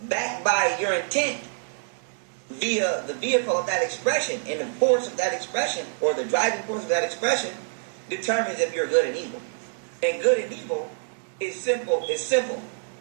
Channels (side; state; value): left; silent; 58 dB below the other